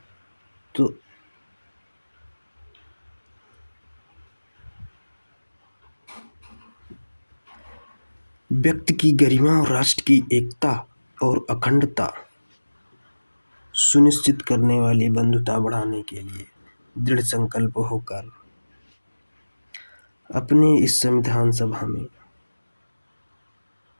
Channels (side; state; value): both; inverted; correlation -1.00